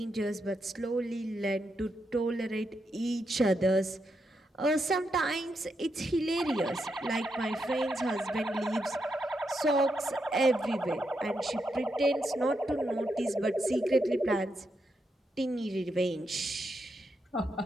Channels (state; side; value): normal; both; correlation 0.83